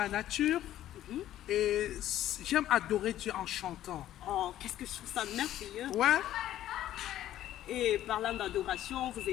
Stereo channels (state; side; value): quieter; right; 12.7 dB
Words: nature. Et j'aime adorer Dieu en chantant. Oh, qu'est-ce que je trouve ça merveilleux. Ouais. Et parlant d'adoration, vous